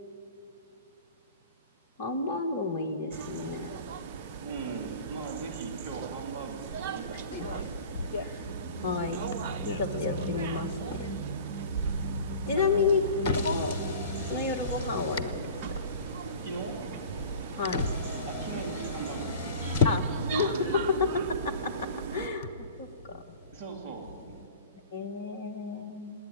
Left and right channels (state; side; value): inverted; both; correlation -0.41